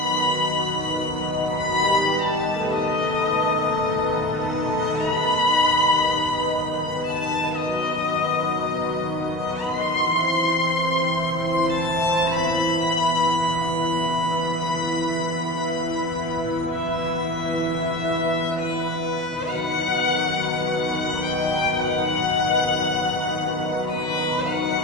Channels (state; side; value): normal; both; correlation 0.32